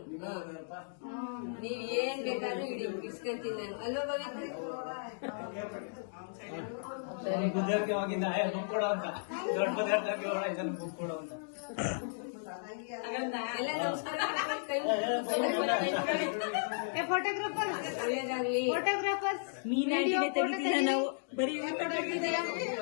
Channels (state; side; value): silent; right; digital silence